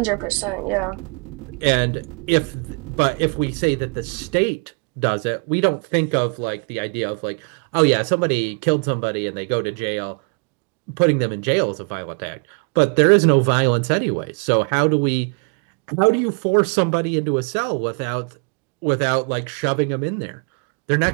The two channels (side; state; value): left; quieter; 35.8 dB